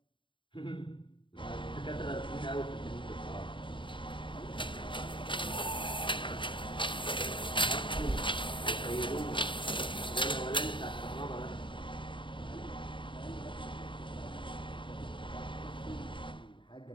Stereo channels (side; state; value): right; late; 0.24 ms